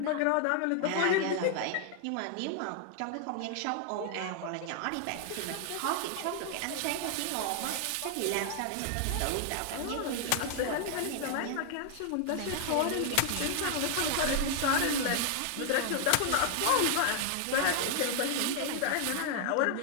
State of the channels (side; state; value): both; different; correlation 0.00